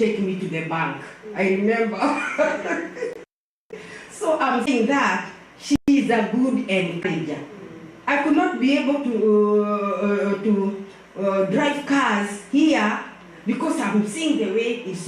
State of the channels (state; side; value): identical; both; correlation 1.00